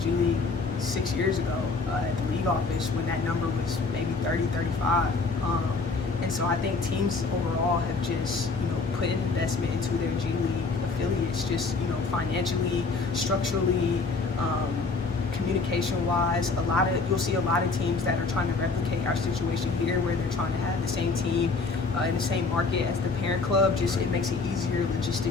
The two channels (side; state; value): right; quieter; 4.1 dB